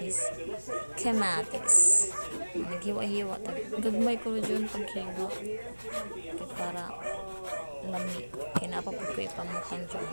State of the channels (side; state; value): both; inverted; correlation -1.00